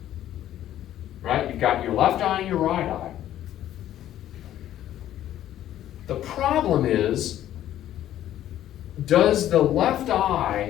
Right? You've got your left eye and your right eye. The problem is, does the left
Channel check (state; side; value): quieter; right; 12.3 dB